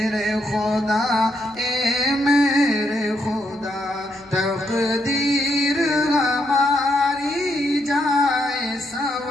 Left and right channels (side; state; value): right; noise; hum, 28 dB below the sound